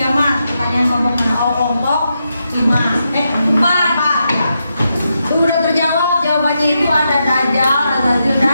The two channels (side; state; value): both; inverted; correlation -0.84